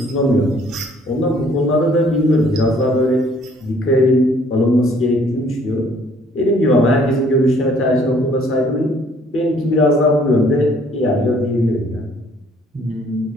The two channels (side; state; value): both; normal; correlation 0.60